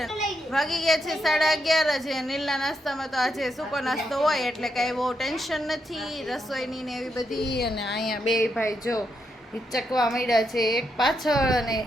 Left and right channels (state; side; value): normal; both; correlation 0.81